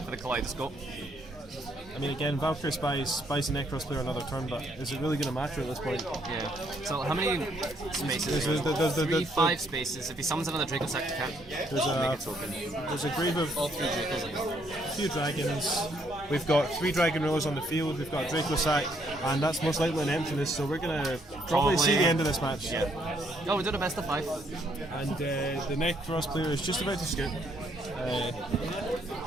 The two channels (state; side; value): normal; both; correlation 0.70